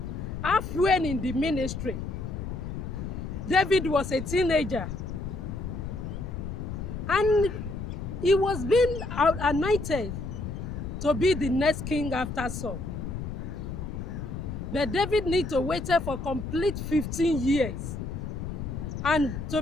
halfway in the ministry. David was a teenager and he was being anointed to be the next king after Saul. But David needed to wait for complete 15 years. And to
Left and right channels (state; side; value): noise; left; rumble, 6 dB below the sound